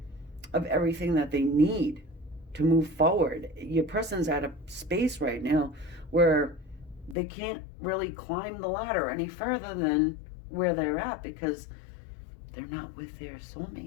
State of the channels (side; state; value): right; drops out; at 7.2 s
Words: everything that they need to move forward. Your person's at a space right now where they can't really climb the ladder any further than where they're at because they're not with their